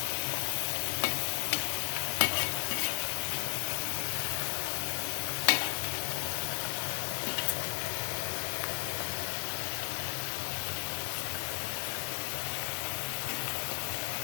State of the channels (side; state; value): right; silent; digital silence